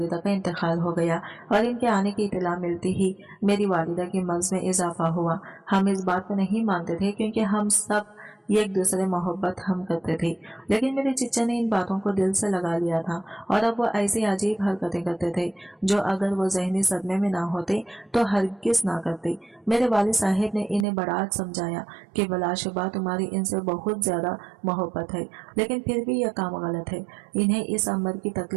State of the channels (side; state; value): left; drops out; at 20.9 s